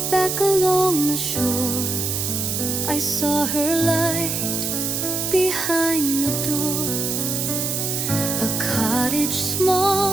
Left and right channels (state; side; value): noise; right; hiss, 1 dB below the sound